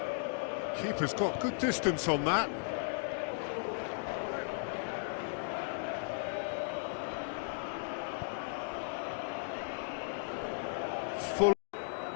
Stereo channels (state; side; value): silent; right; digital silence